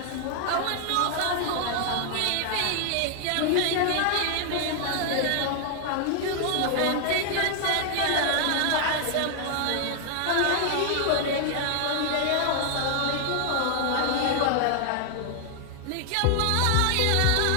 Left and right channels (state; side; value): different; both; correlation 0.00